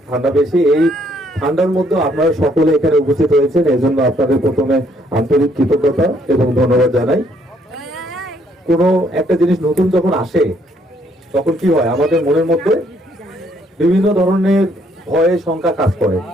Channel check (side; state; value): both; normal; correlation 0.68